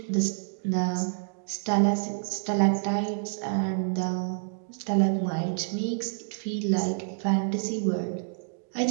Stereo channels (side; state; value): left; silent; digital silence